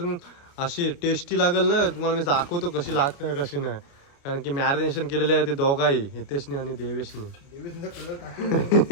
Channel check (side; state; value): right; late; 28 ms